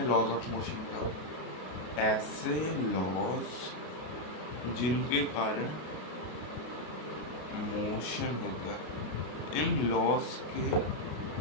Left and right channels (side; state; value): right; late; 33 ms